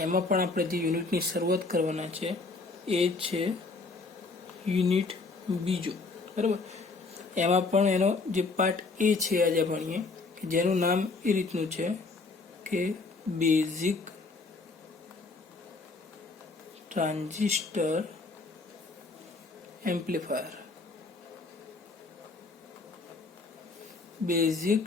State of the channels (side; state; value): right; quieter; 3.8 dB